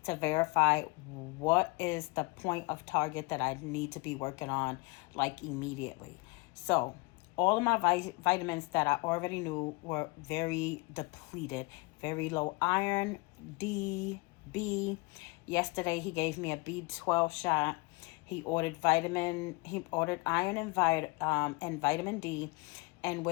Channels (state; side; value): quieter; right; 25.4 dB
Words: to verify what is the point of target that I need to be working on like immediately. So, all of my vitamins that I already knew were very depleted, very low iron, D, B. Yesterday he gave me a B12 shot. He ordered iron and vitamin D, and